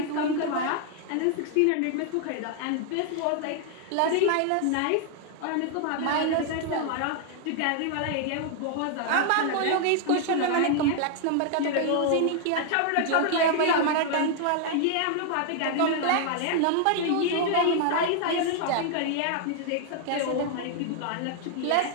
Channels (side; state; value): both; different; correlation 0.00